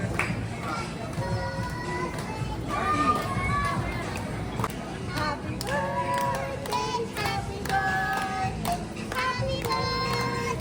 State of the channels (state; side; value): identical; both; correlation 1.00